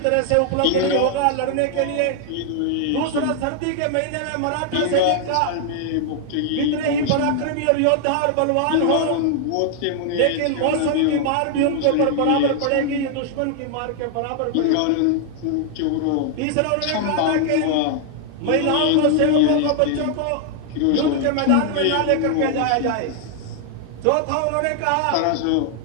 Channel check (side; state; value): both; different; correlation 0.00